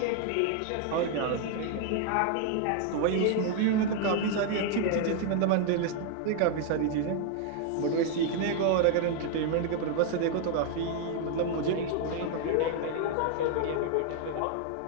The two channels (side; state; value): both; different; correlation 0.00